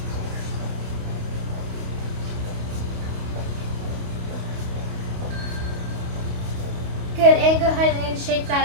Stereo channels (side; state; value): left; late; 28 ms